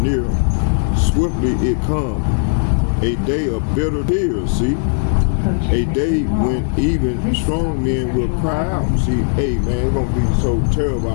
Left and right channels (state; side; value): silent; right; 68 dB below the other